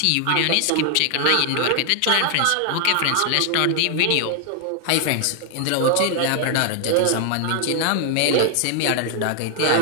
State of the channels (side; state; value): both; different; correlation 0.00